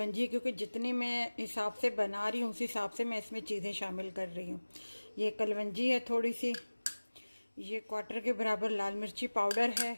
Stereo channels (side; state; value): both; inverted; correlation -1.00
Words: क्योंकि जितनी मैं हिसाब से बना रही हूँ उस हिसाब से मैं इसमें चीज़ें शामिल कर रही हूँ। ये कलवंजी है थोड़ी सी। ये 1/4 के बराबर लाल मिर्ची पाउडर है।